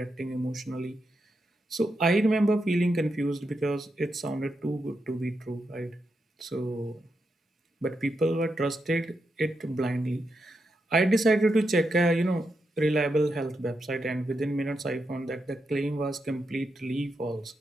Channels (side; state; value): both; normal; correlation 0.85